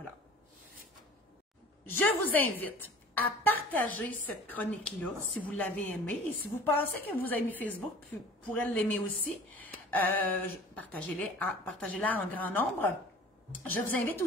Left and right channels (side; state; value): both; normal; correlation 0.45